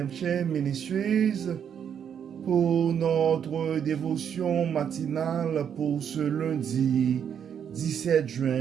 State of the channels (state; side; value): quieter; left; 8.2 dB